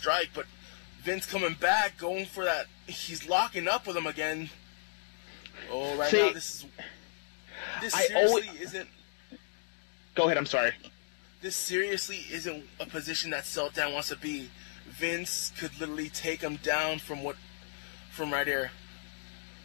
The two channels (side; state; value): right; silent; digital silence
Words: but Vince coming back, going for that. He's locking up with him again. Oh, right now, this seriously isn't... Go ahead, I'm sorry. This seriously isn't a position that Seltan wants to be. Vince could literally take him down from right here.